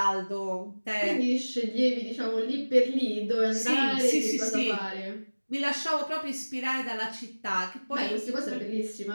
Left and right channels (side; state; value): both; inverted; correlation -1.00